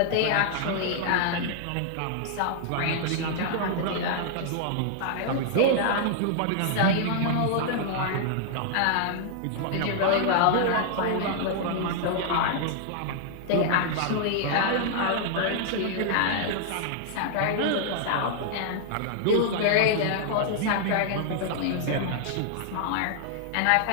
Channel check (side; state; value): both; different; correlation -0.01